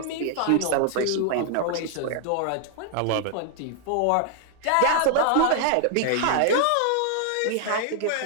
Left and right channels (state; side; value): different; both; correlation 0.00